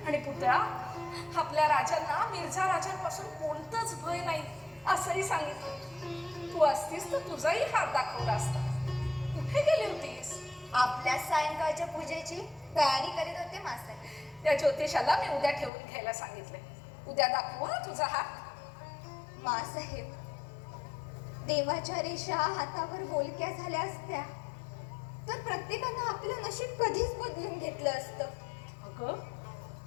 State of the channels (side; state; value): right; drops out; at 15.7 s